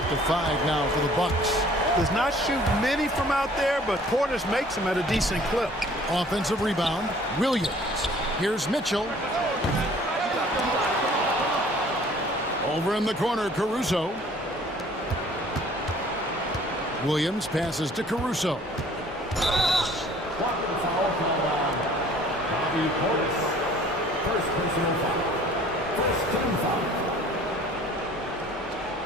to 5 now for the Bucks. Does not shoot many from out there, but Portis makes them at a decent clip. Offensive rebound, Williams. Here's Mitchell. Over in the corner, Caruso. Williams passes to Caruso. First personal foul. First team foul.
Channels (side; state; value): both; normal; correlation 0.53